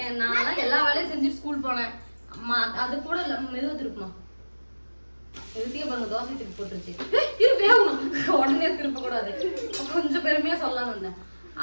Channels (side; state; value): both; inverted; correlation -1.00